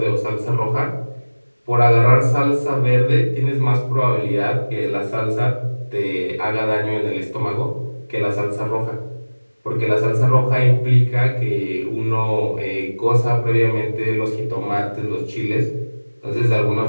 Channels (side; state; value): both; inverted; correlation -1.00